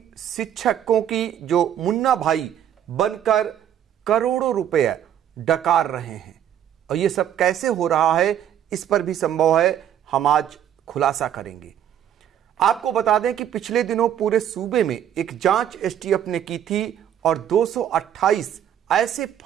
शिक्षकों की जो मुन्ना भाई बनकर करोड़ों रुपए डकार रहे हैं और ये सब कैसे हो रहा है, इस पर भी संभव है हम आज खुलासा करेंगे। आपको बता दें कि पिछले दिनों पूरे सूबे में एक जांच एसटीएफ ने की थी और 228 ऐसे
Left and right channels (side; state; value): left; quieter; 10.2 dB